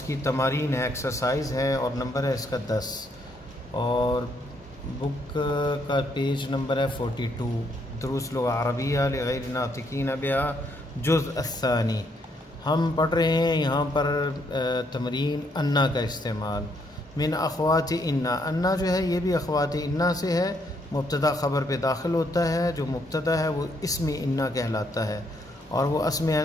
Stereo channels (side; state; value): both; normal; correlation 0.72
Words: کی تمارین ہے، ایکسرسائز ہے، اور نمبر ہے اس کا 10، اور بک کا پیج نمبر ہے 42، دروس لغہ عربیہ لغیر ناطقین بہا جزء الثانی۔ ہم پڑھ رہے ہیں یہاں پر تمرین انا کا استعمال، من اخوات انا۔ انا جو ہے یہ بھی اخوات انا سے ہے، مبتدا خبر پہ داخل ہوتا ہے، جو مبتدا ہے وہ اسم انا کہلاتا ہے، اور وہ